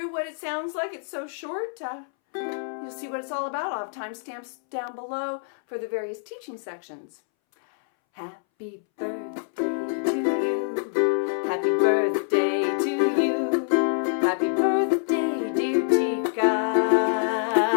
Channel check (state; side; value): silent; right; 61 dB below the other